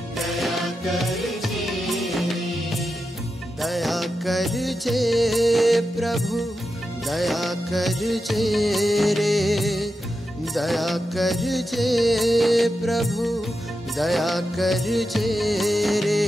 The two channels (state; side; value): normal; both; correlation 0.89